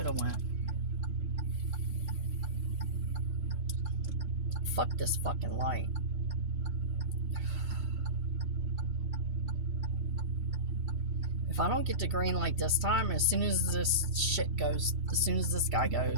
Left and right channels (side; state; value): left; late; 4.0 ms